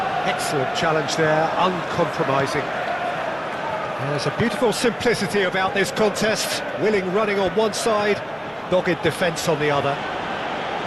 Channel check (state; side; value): identical; both; correlation 1.00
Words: Excellent challenge there, uncompromising. There's a beautiful simplicity about this contest. Willing running on one side, dogged defence on the other.